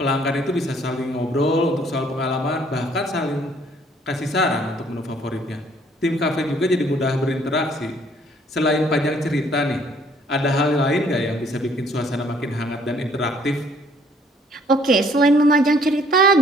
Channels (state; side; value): normal; both; correlation 0.61